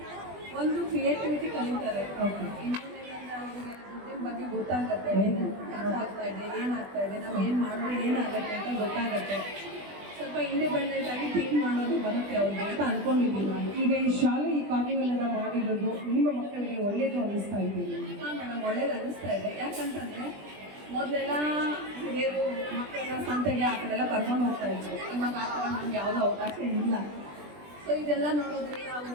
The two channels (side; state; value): left; late; 20 ms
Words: ಒಂದು ಕ್ರಿಯೇಟಿವಿಟಿ ಕಲಿತಾರೆ. ಓಕೆ. ಇನ್ನೊಂದೇನಂದ್ರೆ ಅವ್ರಿಗೆ ದುಡ್ಡಿನ ಬಗ್ಗೆ ಗೊತ್ತಾಗತ್ತೆ, ಏನು ಖರ್ಚು ಆಗ್ತಾ ಇದೆ, ಏನಾಗ್ತಾ ಇದೆ, ನಾವು ಏನು ಮಾಡಿದ್ರೆ ಏನಾಗುತ್ತೆ ಅಂತ ಗೊತ್ತಾಗತ್ತೆ. ಸ್ವಲ್ಪ ಇಂಡಿಪೆಂಡೆಂಟ್ ಆಗಿ ಥಿಂಕ್ ಮಾಡೋದು ಬರುತ್ತೆ ಅವ್ರಿಗೆ ಅಂತ ಅನ್ಕೊಂಡಿದ್ದೀನಿ ನಾನು. ಈಗ ಈ ಶಾಲೆ ಈ ಕಾರ್ನಿವಲನ್ನು ಮಾಡಿರೋದು ನಿಮ್ಮ ಮಕ್ಕಳಿಗೆ ಒಳ್ಳೆಯದು ಅನ್ನಿಸ್ತಾ ಇದೆ? ಹಾಂ ಮೇಡಮ್, ಒಳ್ಳೇದು ಅನ್ನಿಸ್ತಾ ಇದೆ. ಯಾಕಂತಂದರೆ ಮೊದಲೆಲ್ಲ ಹಿರಿಯರು ಮಕ್ಕಳೆಲ್ಲ ಸಂತೆಗೆ ಆ ಕಡೆಲ್ಲ ಕರ್ಕೊಂಡು ಹೋಗ್ತಾ ಇದ್ರು. ಇವಾಗ ಆ ಥರ ನಮ್ಗೆ ಯಾವುದೋ ಅವಕಾಶ ಇಲ್ಲ. ಸೊ ಇದೆಲ್ಲ ನೋಡೋದ್ರಿಂದ ಅವರು